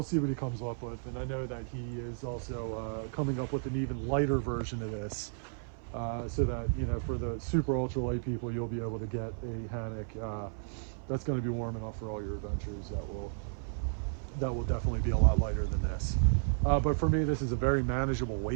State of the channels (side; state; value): left; silent; 56 dB below the other